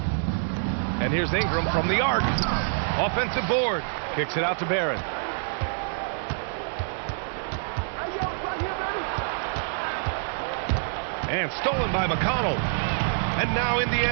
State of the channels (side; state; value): left; silent; digital silence